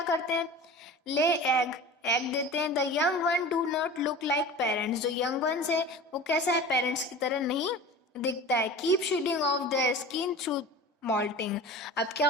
करते हैं, ले एग देते हैं। The young one do not look like parents, जो यंग वंस है वो कैसा है, पेरेंट्स की तरह नहीं दिखता है। Keep shedding of their skin through moulting. अब क्या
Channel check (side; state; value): both; normal; correlation 0.36